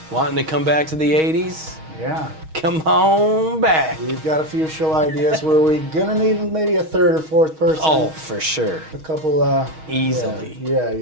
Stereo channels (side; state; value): left; late; 6.3 ms